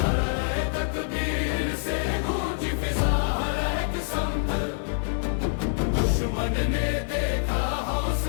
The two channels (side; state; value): right; silent; digital silence